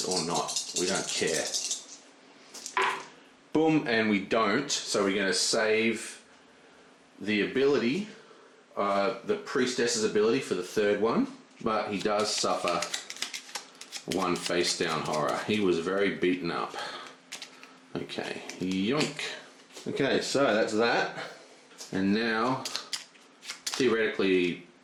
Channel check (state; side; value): identical; both; correlation 1.00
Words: or not, we don't care. Boom, and we don't, so we're going to save the ability, the priestess's ability for the 3rd one. But he does suffer 1 face down horror. He was very beaten up. Okay, yoink. Okay, so that's that. And now, theoretically